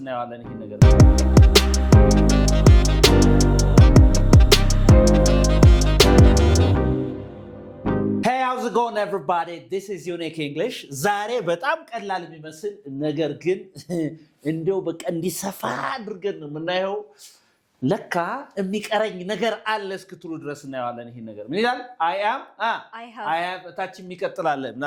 እናያለን ይሄን ነገር Hey, how's it going everybody? This is Unique English. ዛሬ በጣም ቀላል የሚመስል ነገር ግን እንደው በቃ እንዲሰፋ አድርገን ነው የምናየው ለካ የሚቀረኝ ነገር አለ እስክትሉ ድረስ እናያለን ይሄን ነገር ምን ይላል I have ታች የሚቀጥላል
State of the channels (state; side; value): identical; both; correlation 1.00